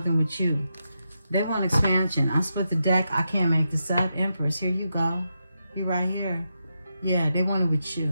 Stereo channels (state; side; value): inverted; both; correlation -0.85